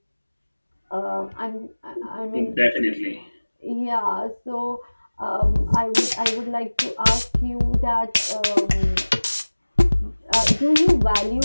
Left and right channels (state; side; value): inverted; both; correlation -1.00